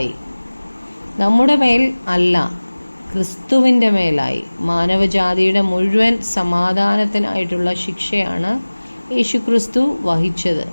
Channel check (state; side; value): inverted; both; correlation -1.00